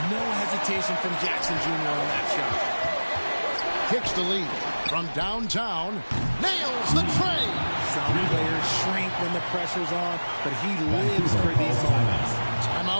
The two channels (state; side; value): inverted; both; correlation -1.00